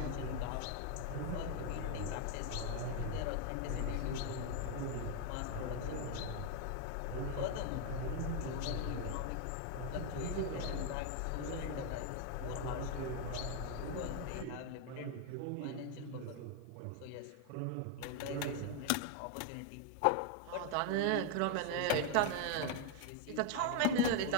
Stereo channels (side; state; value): both; different; correlation 0.01